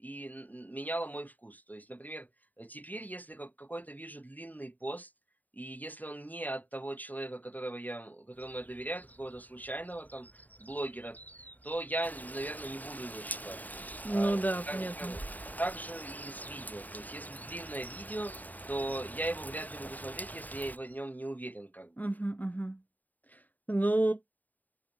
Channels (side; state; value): right; late; 0.083 ms